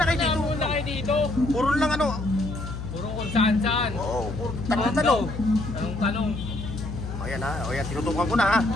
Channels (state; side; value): noise; left; hum, 7 dB below the sound